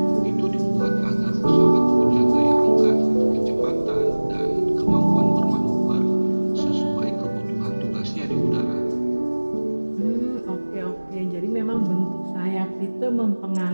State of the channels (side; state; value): both; inverted; correlation -1.00